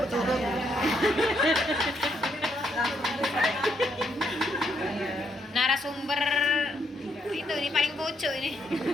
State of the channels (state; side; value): normal; both; correlation 0.75